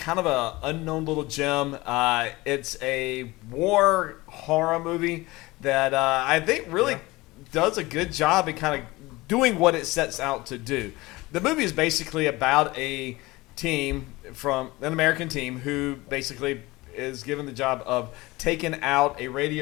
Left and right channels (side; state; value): right; quieter; 21.0 dB